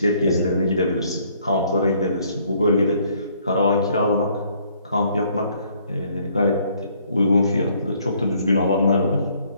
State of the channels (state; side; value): inverted; both; correlation -0.64